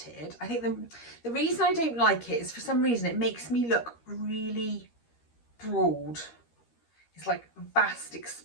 I think the reason I don't like it is, for some reason, it makes me look really broad. It's like a vast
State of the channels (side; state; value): right; late; 13 ms